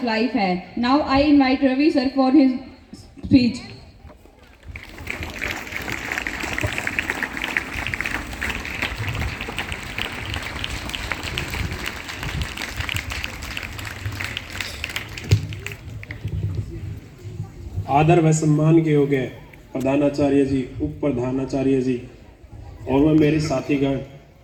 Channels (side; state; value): both; identical; correlation 1.00